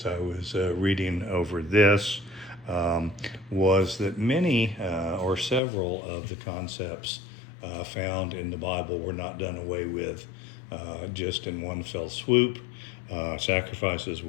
I was reading over this was that many or several of the concepts found in the Bible were not done away with just in one fell swoop. Sacrifices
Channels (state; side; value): drops out; right; at 5.6 s